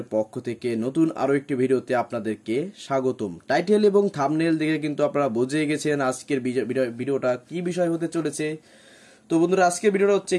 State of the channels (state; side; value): identical; both; correlation 1.00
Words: পক্ষ থেকে নতুন আরো একটি ভিডিওতে আপনাদেরকে স্বাগতম। টাইটেল এবং থাম্বনেল দেখে কিন্তু আপনারা বুঝে গেছেন আজকের ভিডিওটা কি বিষয় হতে চলেছে। তো বন্ধুরা, আজকের ভিডিওটা হচ্ছে